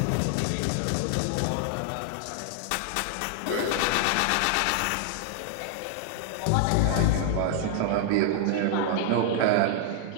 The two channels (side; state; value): both; different; correlation 0.00